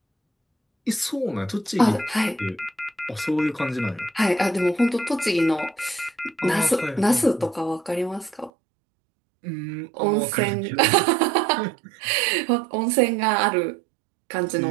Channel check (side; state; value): left; drops out; at 8.5 s